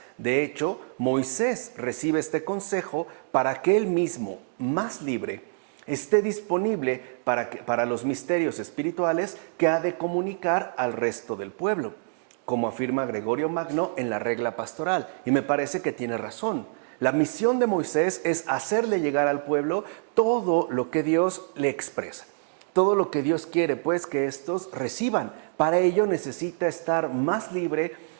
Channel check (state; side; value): silent; left; digital silence